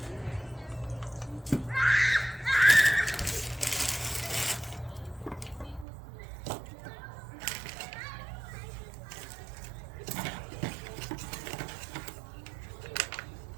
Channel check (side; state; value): left; drops out; at 5.9 s